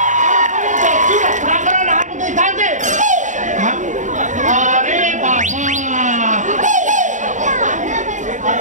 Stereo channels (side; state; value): left; late; 0.36 ms